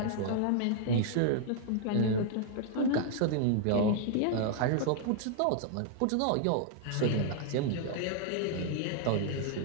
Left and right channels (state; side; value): different; both; correlation 0.00